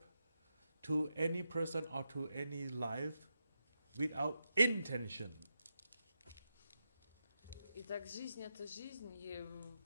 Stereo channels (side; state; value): both; inverted; correlation -0.87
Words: to any person or to any life without intention. Итак, жизнь – это жизнь, и